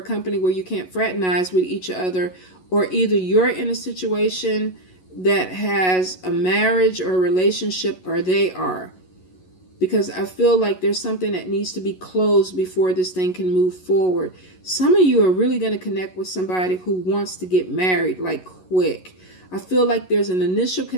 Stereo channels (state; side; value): late; right; 11 ms